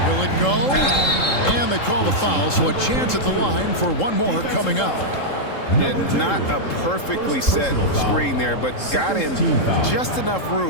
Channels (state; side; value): late; right; 3.7 ms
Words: Will it go? And they call the foul, so a chance at the line for one more coming up. Yeah, not a perfectly set screen there, but got him just enough